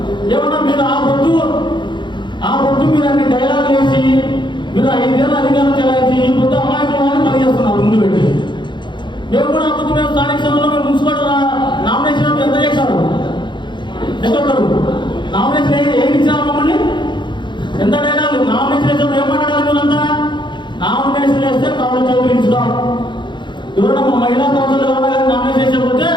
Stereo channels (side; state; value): right; late; 0.23 ms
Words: ఏమన్నా మీరు ఆ పొద్దు మీరు అన్ని డైలాగ్ వేసి మీరు 5 ఏళ్ళ అధికారం చెలాయించి ఈ పొద్దు అమాయకులను పని చేస్తున్నారు ముందు పెట్టి. మేము కూడా ఆ పొద్దు మేము స్థానిక సంస్థలో మేము మున్సిపల్ నామినేషన్ ఎంత చేశారు? ఒక్కొక్కరు నామినేషన్ ఏం ఇచ్చారు మమ్మల్ని? ఎంత డైలాగ్ నామినేషన్ వేసాం? ఏం మాట్లాడాలి మీరంతా? నామినేషన్ వేస్తే కాళ్ళు చేతులు ఇచ్చుతాం. ఎవరైనా మా మహిళా కౌన్సిల్ ఎవరైనా కానీ నామినేషన్ వేసకపోతే